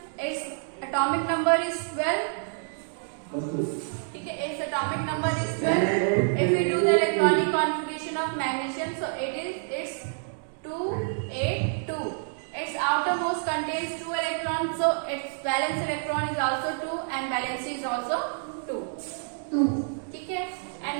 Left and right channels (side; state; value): left; silent; digital silence